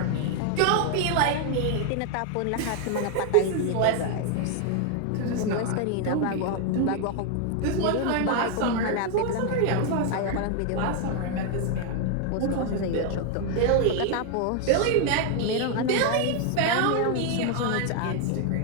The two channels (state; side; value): different; both; correlation 0.00